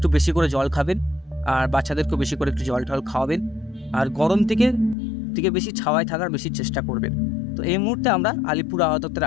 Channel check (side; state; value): right; drops out; at 5.0 s